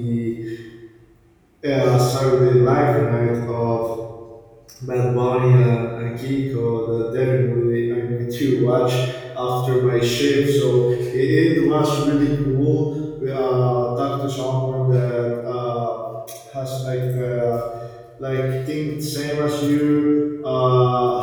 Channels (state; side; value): identical; both; correlation 1.00